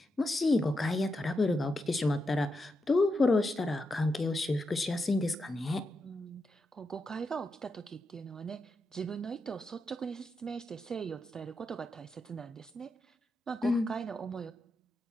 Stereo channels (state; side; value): normal; both; correlation 0.86